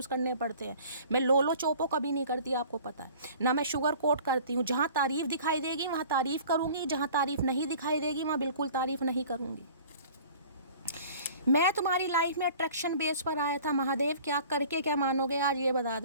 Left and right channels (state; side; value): inverted; both; correlation -0.47